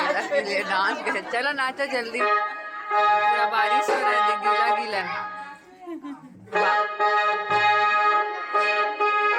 करे, चलो नाचो जल्दी। पूरा बारिश हो रहा है, गीला गीला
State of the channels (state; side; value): identical; both; correlation 1.00